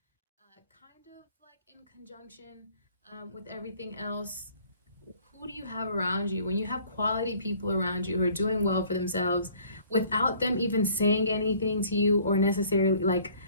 kind of like in conjunction with everything else. Who do you have around you? When you have quality people around you who are doing well for themselves without them even saying anything to you or necessarily like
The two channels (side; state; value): both; inverted; correlation -0.56